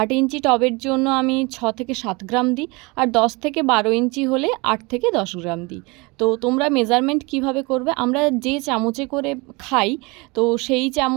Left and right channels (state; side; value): quieter; left; 26.7 dB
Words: ইঞ্চি টবের জন্য আমি 6 থেকে 7 গ্রাম দিই, আর 10 থেকে 12 ইঞ্চি হলে 8 থেকে 10 গ্রাম দিই। তো তোমরা মেজারমেন্ট কিভাবে করবে, আমরা যে চামচে করে খাই তো সেই